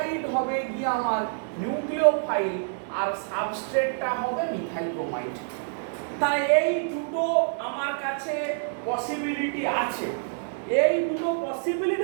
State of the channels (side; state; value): left; silent; 60 dB below the other